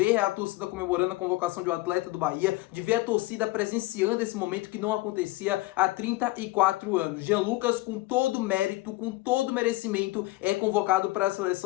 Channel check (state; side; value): quieter; right; 19.6 dB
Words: a torcida comemorando a convocação de um atleta do Bahia, de ver a torcida presenciando esse momento que não acontecia há 34 anos. Jean Lucas, com todo mérito, com todo merecimento, é convocado para a